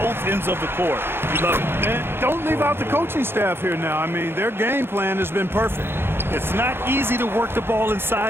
ends of the court. You love it. And don't leave out the coaching staff here now. I mean, their game plan has been perfect. It's not easy to work the ball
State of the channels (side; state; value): left; late; 0.11 ms